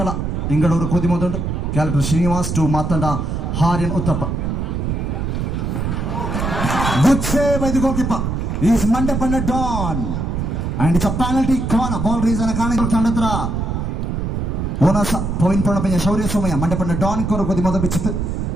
ಇಂಗಳೂರು ಖುದಿ ಮೊದಲು ಕ್ಯಾಲೆಕ್ಟರ್ ಶ್ರೀನಿವಾಸ್ ಟು ಮಾತಂಡ ಹಾರಿನ್ ಉತ್ತಪ್ಪ ಗುಡ್ ಸೇವ್ ಇದು ಗೋಕಿಪ್ಪ is Mandyapanda Don and it's a penalty corner ball reason ಕಾರಣ ತಂಡತ್ರ ಓನಸ ಪವಿನ್ ಪಣಪಂಜ ಶೌರ್ಯ ಸೋಮಯ್ಯ ಮಂಡಪಣ್ಣ ಡಾನ್ ಕೊರ ಕೊದಿ ಮೊದ ಬಿಚ್ಚಿತ್ತು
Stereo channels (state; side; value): noise; right; rumble, 2 dB below the sound